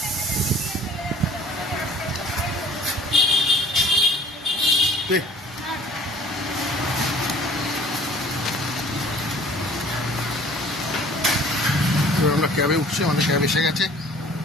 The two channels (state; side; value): normal; both; correlation 0.51